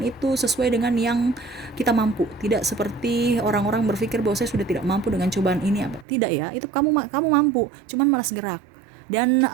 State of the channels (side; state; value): left; drops out; at 6.1 s